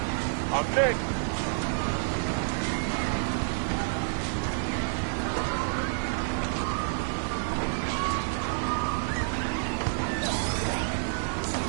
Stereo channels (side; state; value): left; silent; 57 dB below the other